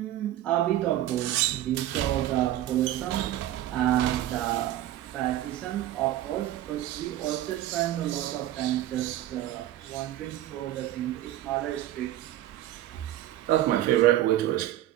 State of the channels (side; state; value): left; quieter; 13.5 dB